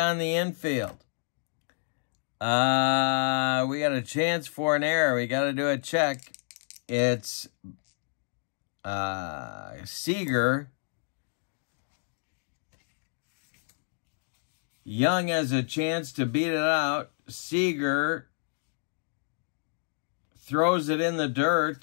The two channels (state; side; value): silent; right; digital silence